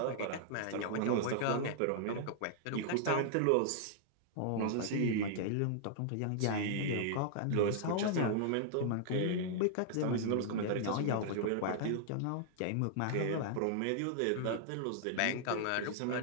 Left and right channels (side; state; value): both; different; correlation -0.01